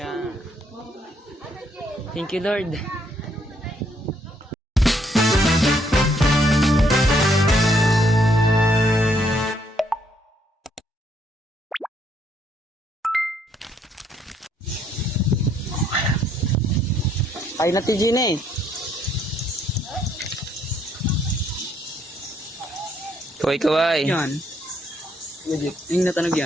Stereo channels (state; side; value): normal; both; correlation 0.70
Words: Thank you, Lord. Ay na ti Gine. Kaway. Yan. Yung natanog